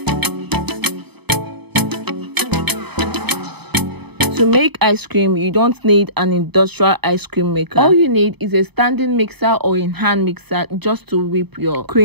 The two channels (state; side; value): late; left; 0.98 ms